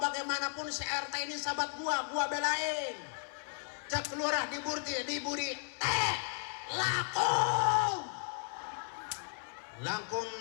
bagaimanapun si RT ini sahabat gua belain. Cek lurah diburi teh laku lakum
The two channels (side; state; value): right; silent; 54 dB below the other